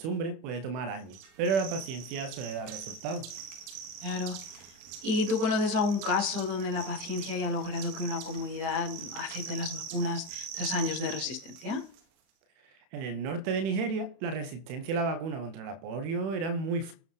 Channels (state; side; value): late; left; 30 ms